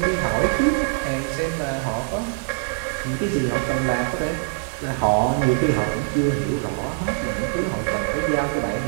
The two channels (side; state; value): left; silent; digital silence